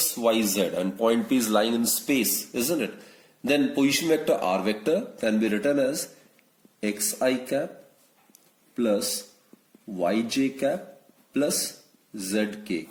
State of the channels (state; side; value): identical; both; correlation 1.00